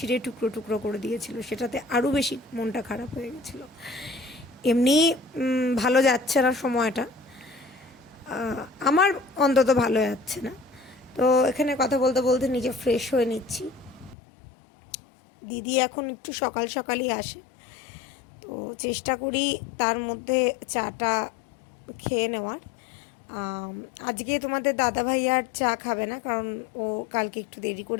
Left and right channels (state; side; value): drops out; right; at 14.2 s